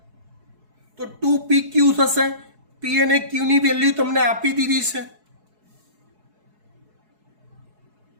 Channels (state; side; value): late; left; 4.7 ms